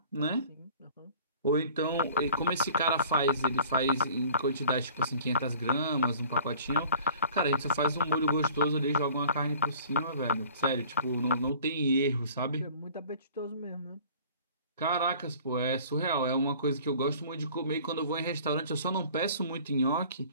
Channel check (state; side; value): inverted; both; correlation -0.49